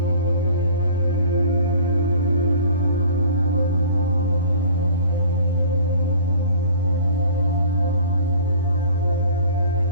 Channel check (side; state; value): both; inverted; correlation -0.48